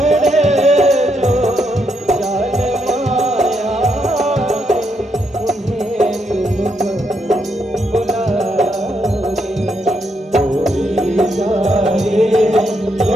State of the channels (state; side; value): normal; both; correlation 0.78